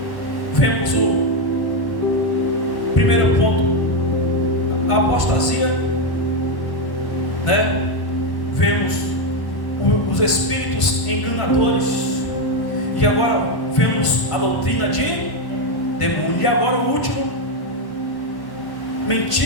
Vemos o primeiro ponto, a apostasia, né? Vemos os espíritos enganadores, e agora vemos a doutrina de demônio. E agora o último,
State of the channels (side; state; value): right; late; 1.1 ms